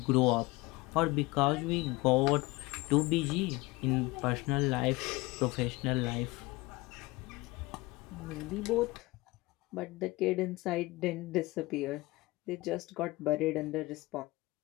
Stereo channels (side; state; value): right; quieter; 21.9 dB